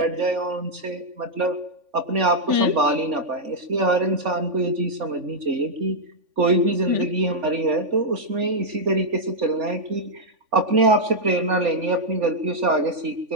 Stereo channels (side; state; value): left; late; 3.5 ms